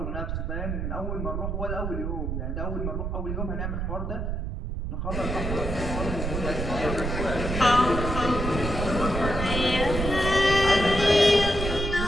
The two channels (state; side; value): noise; right; rumble, 3 dB below the sound